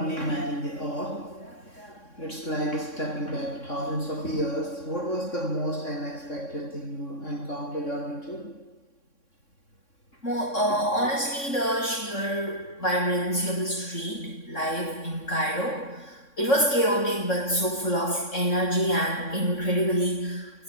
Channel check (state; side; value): late; right; 3.6 ms